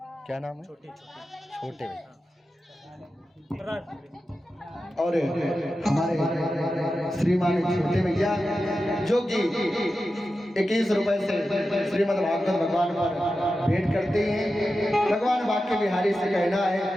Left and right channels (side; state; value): both; normal; correlation 0.92